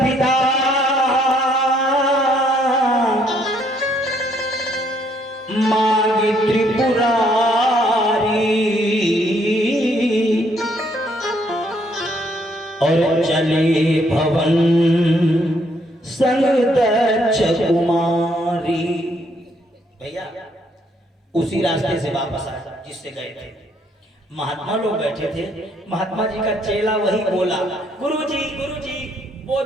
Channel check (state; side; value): normal; both; correlation 0.69